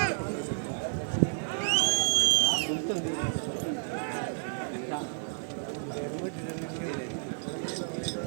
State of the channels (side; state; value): left; silent; digital silence